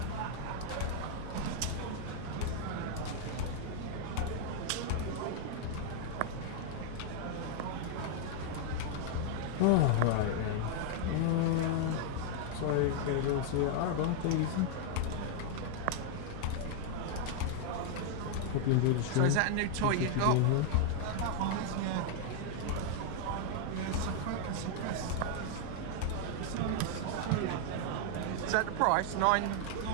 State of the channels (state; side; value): different; both; correlation 0.00